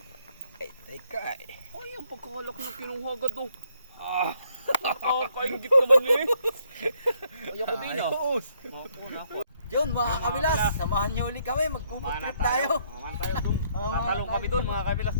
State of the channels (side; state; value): both; inverted; correlation -0.70